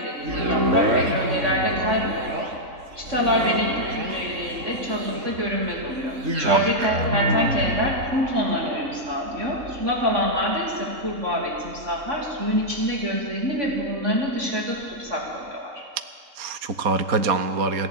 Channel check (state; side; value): late; left; 3.7 ms